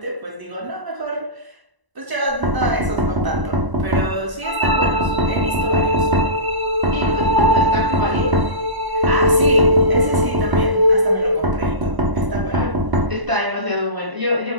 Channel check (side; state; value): left; late; 1.0 ms